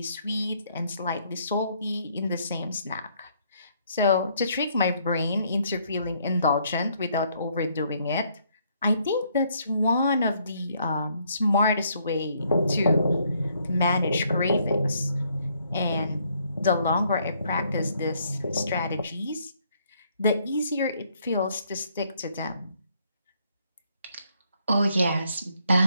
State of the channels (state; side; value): inverted; both; correlation -0.69